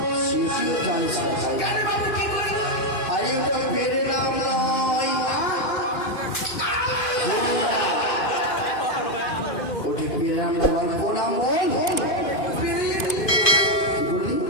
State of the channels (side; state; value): right; late; 2.5 ms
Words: সেটিও জানিস না। আরে ওটা পেরে নাম নয়, ওটি পেরে নাম নয়, প্রণাম বল।